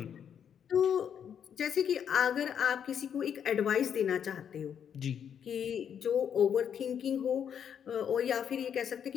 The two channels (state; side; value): quieter; right; 8.3 dB